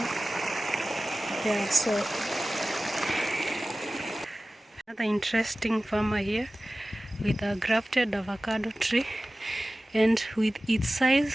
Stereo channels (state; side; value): normal; both; correlation 0.97